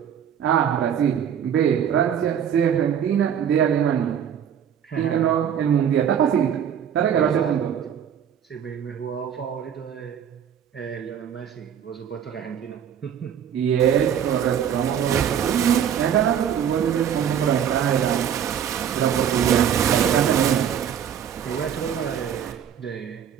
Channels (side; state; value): left; quieter; 8.8 dB